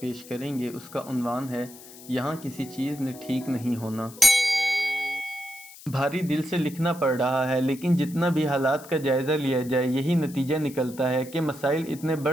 کریں گے اس کا عنوان ہے یہاں کسی چیز نے ٹھیک نہیں ہونا۔ بھاری دل سے لکھنا پڑ رہا ہے، لیکن جتنا بھی حالات کا جائزہ لیا جائے یہی نتیجہ نکلتا ہے کہ مسائل اتنے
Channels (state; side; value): noise; left; hiss, 18 dB below the sound